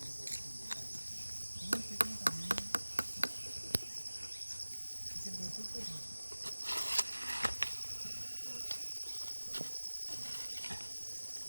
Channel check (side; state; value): both; inverted; correlation -1.00